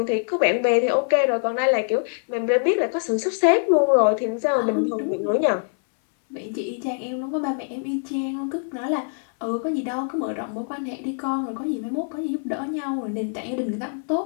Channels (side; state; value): right; silent; 61 dB below the other